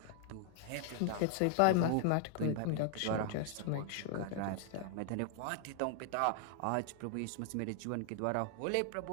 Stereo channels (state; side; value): different; both; correlation 0.00